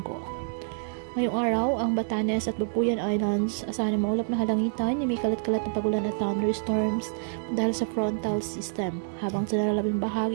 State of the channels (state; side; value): silent; left; 60 dB below the other